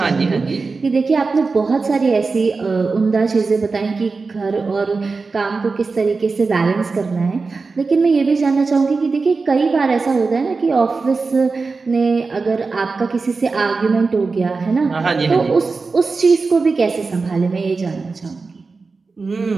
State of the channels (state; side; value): quieter; left; 4.2 dB